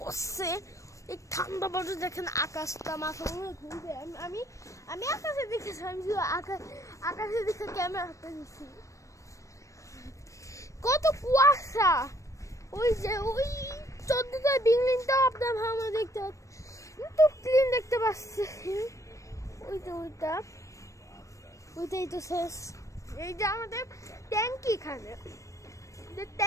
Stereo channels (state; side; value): late; right; 0.15 ms